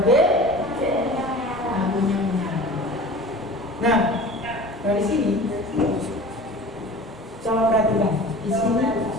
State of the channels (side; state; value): both; normal; correlation 0.39